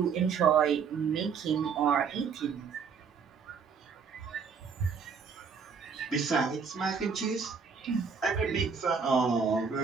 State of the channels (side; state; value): left; quieter; 5.9 dB